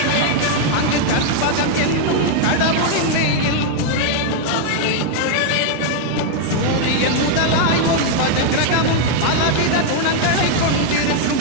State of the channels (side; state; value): both; different; correlation 0.00